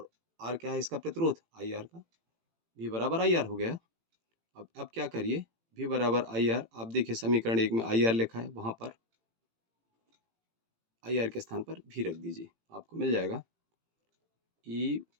आर क्या है, इसका प्रतिरोध आई आर का, भी बराबर आई आर हो गया। अब क्या करिए, भी बराबर आई आर, आप देखिए समीकरण 1 में आई आर लिखा है, वहां पर आई आर के स्थान पर भी रख दीजिए, आपको मिल जाएगा ई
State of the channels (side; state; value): left; late; 18 ms